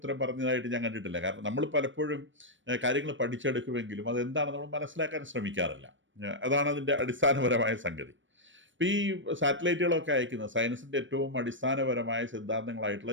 പറഞ്ഞതായിട്ട് ഞാൻ കണ്ടിട്ടില്ല. കാരണം നമ്മൾ പലപ്പോഴും കാര്യങ്ങൾ പഠിച്ചെടുക്കുമെങ്കിലും അതെന്താണ് നമ്മൾ മനസ്സിലാക്കാൻ ശ്രമിക്കാറില്ല. അതാണ് അതിൻ്റെ അടിസ്ഥാനപരമായ സംഗതി. ഇപ്പോൾ ഈ സാറ്റലൈറ്റുകളൊക്കെ അയക്കുന്ന സയൻസിൻ്റെ ഏറ്റവും അടിസ്ഥാനപരമായ സിദ്ധാന്തങ്ങളായിട്ടുള്ള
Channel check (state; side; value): late; left; 0.56 ms